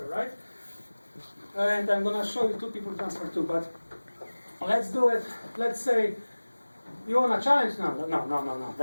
right? And I'm going to show you 2 people transfer too, but let's do it. Let's say you want to challenge? No.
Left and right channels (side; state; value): both; inverted; correlation -1.00